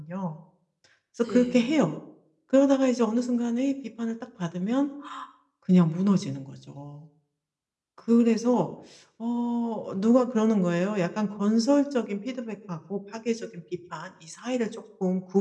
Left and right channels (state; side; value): identical; both; correlation 1.00